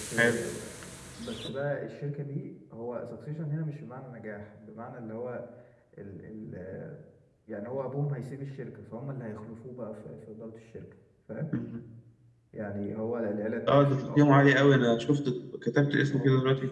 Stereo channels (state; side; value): identical; both; correlation 1.00